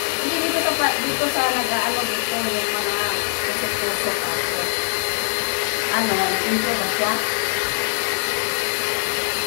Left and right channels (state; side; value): silent; right; 62 dB below the other